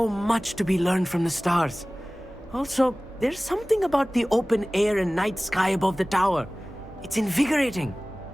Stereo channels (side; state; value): both; normal; correlation 0.98